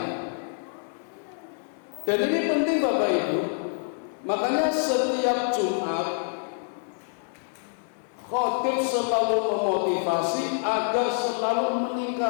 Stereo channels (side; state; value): right; silent; 59 dB below the other